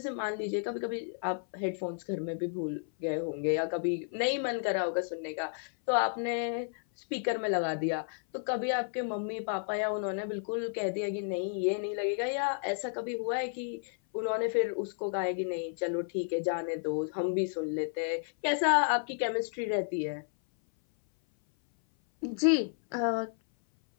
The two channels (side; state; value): right; silent; 56 dB below the other